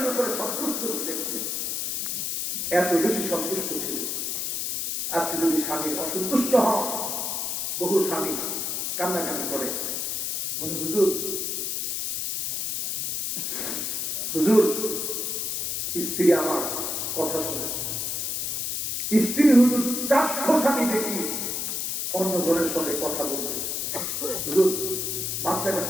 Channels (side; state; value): left; noise; hiss, 1 dB below the sound